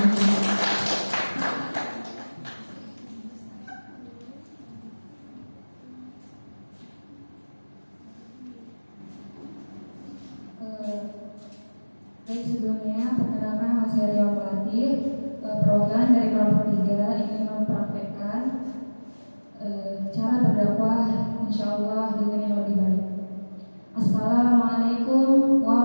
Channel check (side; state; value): both; inverted; correlation -1.00